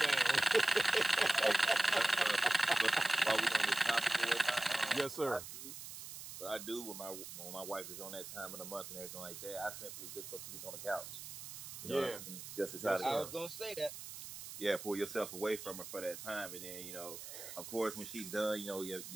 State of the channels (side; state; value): right; noise; hiss, 10 dB below the sound